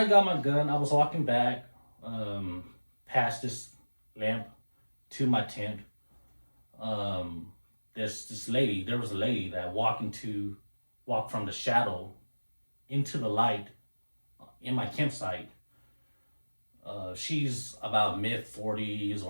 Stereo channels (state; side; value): inverted; both; correlation -1.00